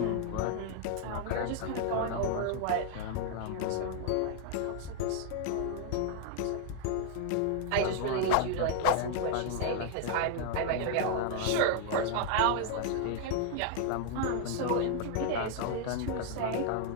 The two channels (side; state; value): both; different; correlation 0.00